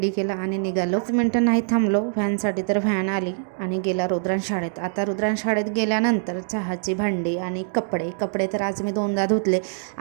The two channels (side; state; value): left; silent; digital silence